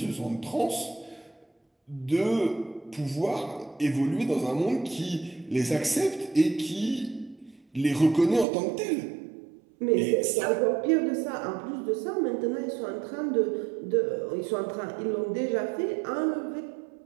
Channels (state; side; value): drops out; left; at 8.5 s